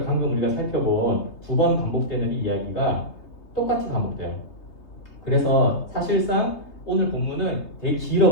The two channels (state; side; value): late; right; 3.3 ms